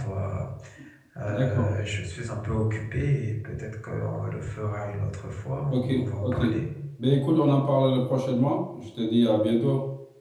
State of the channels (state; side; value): identical; both; correlation 1.00